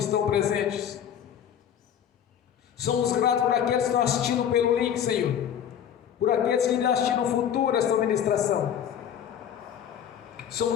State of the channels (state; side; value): quieter; right; 9.2 dB